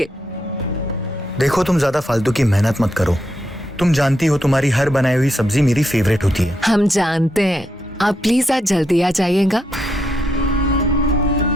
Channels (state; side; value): normal; both; correlation 0.80